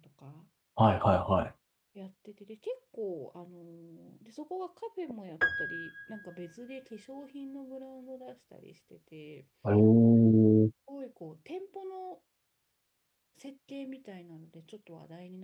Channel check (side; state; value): both; identical; correlation 1.00